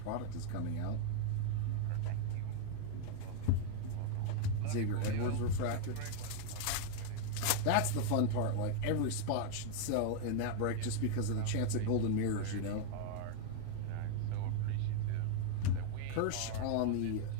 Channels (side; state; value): both; different; correlation 0.01